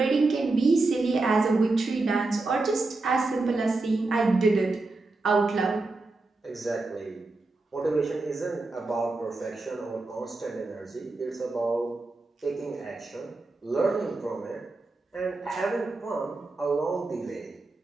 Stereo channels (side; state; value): left; quieter; 3.3 dB